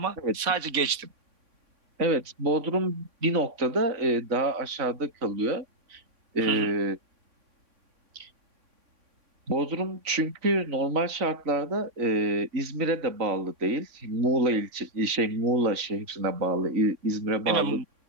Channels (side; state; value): left; late; 3.6 ms